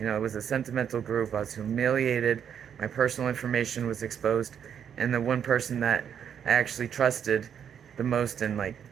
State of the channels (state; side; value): quieter; left; 8.4 dB